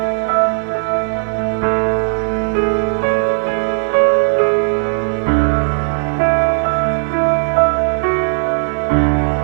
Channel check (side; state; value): left; silent; 59 dB below the other